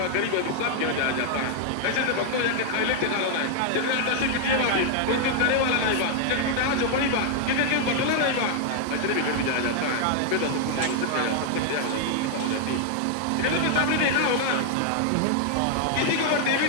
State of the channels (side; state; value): both; different; correlation 0.00